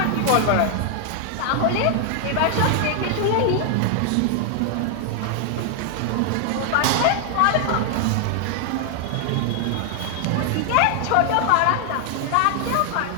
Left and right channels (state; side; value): different; both; correlation 0.00